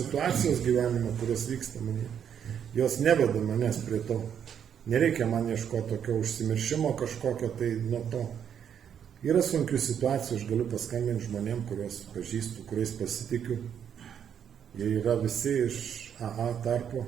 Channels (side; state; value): left; quieter; 8.5 dB